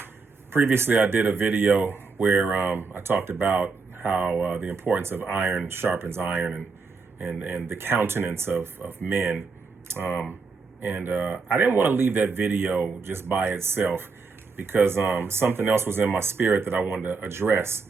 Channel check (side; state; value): left; quieter; 4.5 dB